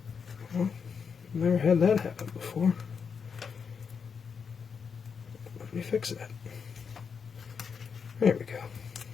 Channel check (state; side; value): quieter; right; 6.2 dB